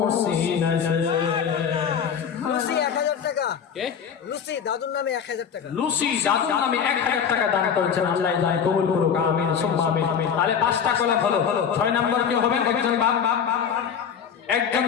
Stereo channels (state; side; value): quieter; right; 7.5 dB